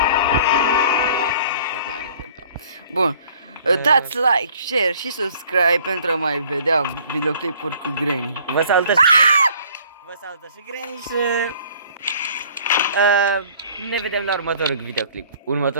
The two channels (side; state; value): both; inverted; correlation -0.55